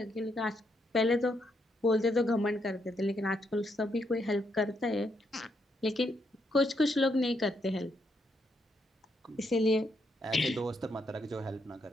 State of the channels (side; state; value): both; normal; correlation 0.77